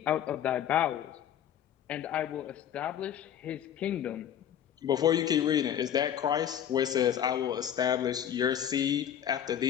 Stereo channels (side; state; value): right; quieter; 9.8 dB